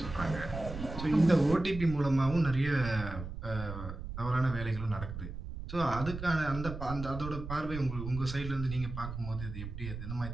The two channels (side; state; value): right; noise; rumble, 8 dB below the sound